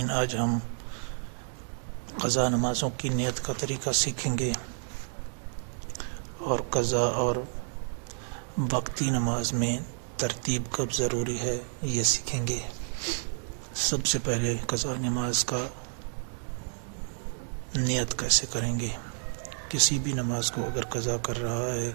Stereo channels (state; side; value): silent; left; 58 dB below the other